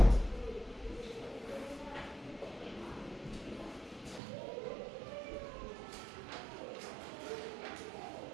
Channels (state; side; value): drops out; left; at 4.2 s